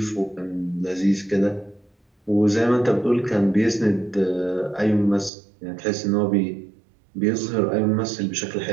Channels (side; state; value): left; drops out; at 5.3 s